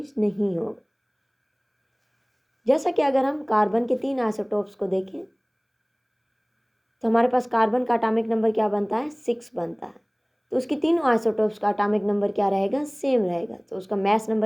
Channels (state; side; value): identical; both; correlation 1.00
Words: नहीं होगा। जैसा कि अगर हम कार्बन के 3 आइसोटोप्स को देखें तो हमारे पास कार्बन का अटोमिक नंबर क्या बनता है 6 बनता है, तो उसकी तीनों आइसोटोप्स का अटोमिक नंबर क्या रहेगा सेम रहेगा। तो उसका मैस